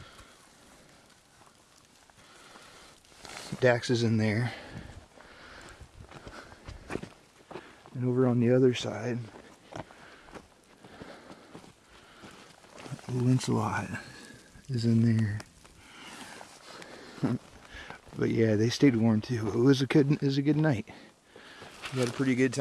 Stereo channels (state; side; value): identical; both; correlation 1.00